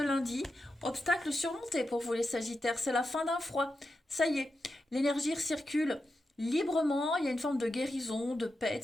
lundi. Obstacle surmonté pour vous les sagittaires. C'est la fin d'un froid. Ça y est. L'énergie circule librement. Il y a une forme de guérison, de paix, de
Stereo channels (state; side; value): normal; both; correlation 0.88